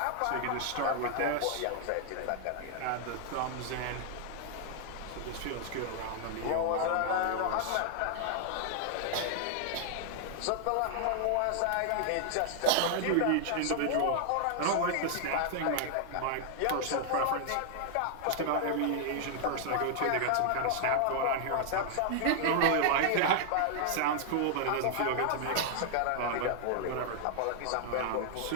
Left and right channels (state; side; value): different; both; correlation -0.01